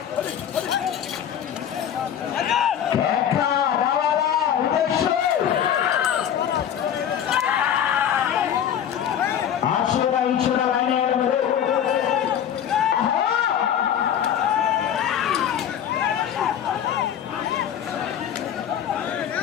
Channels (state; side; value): quieter; right; 9.4 dB